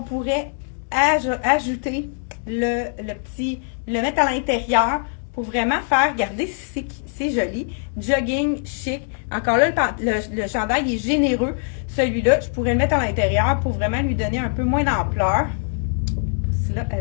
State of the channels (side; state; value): right; silent; digital silence